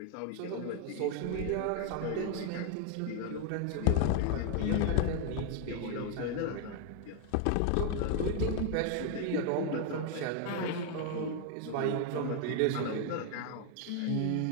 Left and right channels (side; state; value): both; different; correlation 0.00